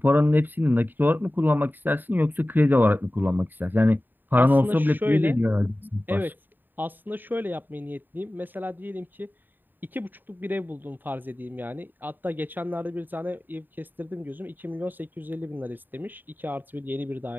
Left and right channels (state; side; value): late; left; 0.091 ms